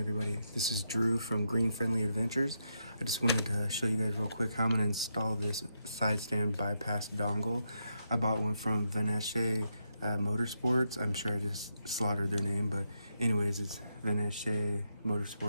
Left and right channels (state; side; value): inverted; both; correlation -0.82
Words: everybody. This is Drew from Green Friendly Adventures. I just wanted to show you guys real quick how I'm going to install this side stand bypass dongle. I bought one from Veneche Motorsports. I'm sure I just slaughtered their name, but anyways, it's Veneche